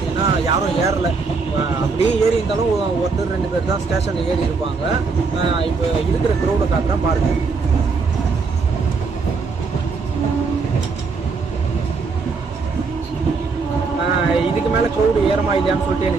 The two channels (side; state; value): left; quieter; 4.6 dB